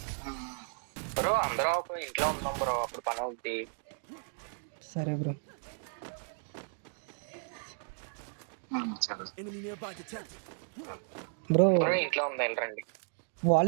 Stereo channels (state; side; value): silent; left; 55 dB below the other